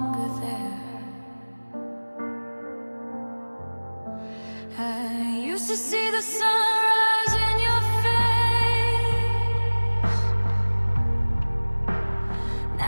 there. I used to see the sunrise in your face.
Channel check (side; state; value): both; inverted; correlation -1.00